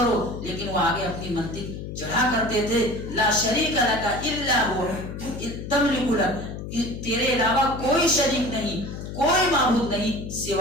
لیکن وہ آگے اپنی منطق چڑھا کرتے تھے، لا شریک لک الا هو تملک لک، تیرے علاوہ کوئی شریک نہیں، کوئی معبود نہیں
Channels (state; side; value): noise; left; hum, 8 dB below the sound